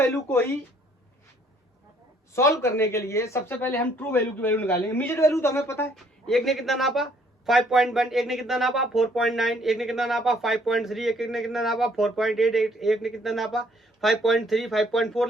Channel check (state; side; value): normal; both; correlation 0.63